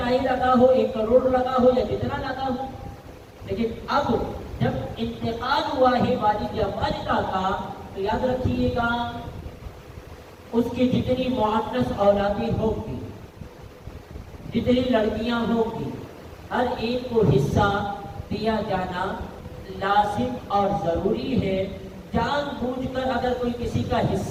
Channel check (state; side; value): identical; both; correlation 1.00